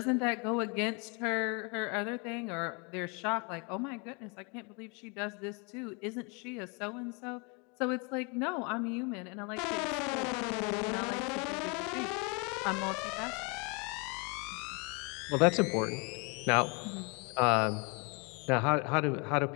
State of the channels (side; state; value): right; quieter; 32.3 dB